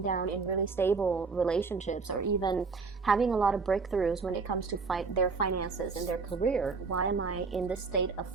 down in really stable relationships, or even having a lot of breakthroughs when it comes to their finances and their career? Why am I in this state of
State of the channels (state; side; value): quieter; left; 4.6 dB